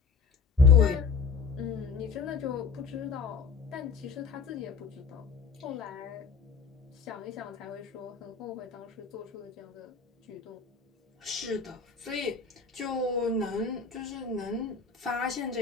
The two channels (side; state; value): right; quieter; 5.2 dB